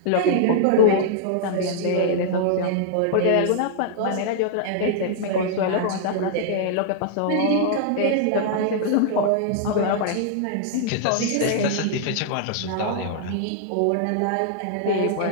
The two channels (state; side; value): different; both; correlation -0.01